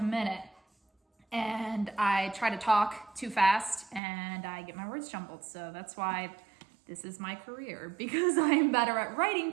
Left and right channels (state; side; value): drops out; left; at 4.0 s